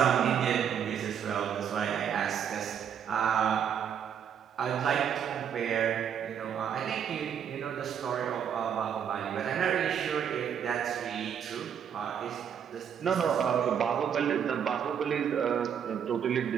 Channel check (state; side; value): quieter; left; 8.3 dB